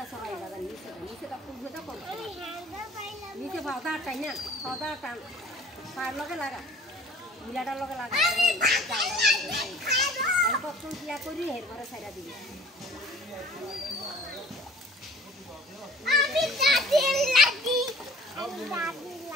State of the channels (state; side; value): normal; both; correlation 0.49